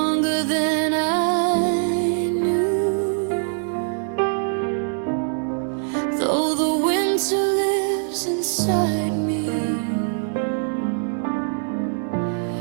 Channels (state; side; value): silent; left; digital silence